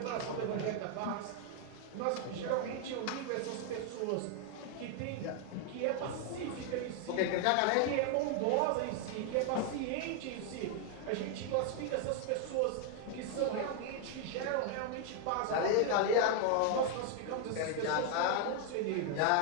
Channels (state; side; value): different; both; correlation 0.00